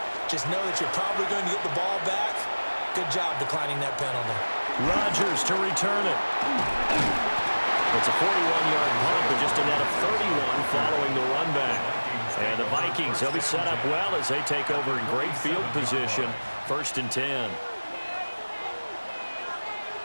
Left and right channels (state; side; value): inverted; both; correlation -1.00